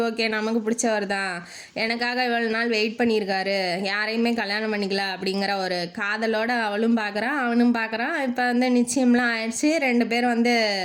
ஓகே நமக்கு பிடிச்சவர் தான், எனக்காக இவ்வளோ நாள் வெயிட் பண்ணியிருக்காரு, யாரையுமே கல்யாணம் பண்ணிக்கலாம் அப்படிங்கிற ஒரு காதலோடு அவளும் பார்க்குறான் அவனும் பார்க்குறான். இப்போ வந்து நிச்சயம்லாம் ஆயிடுச்சு. 2 பேரும் வந்து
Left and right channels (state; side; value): identical; both; correlation 1.00